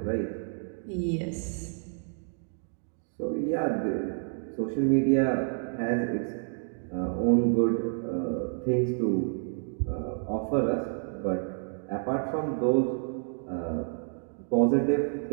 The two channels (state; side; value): silent; left; 58 dB below the other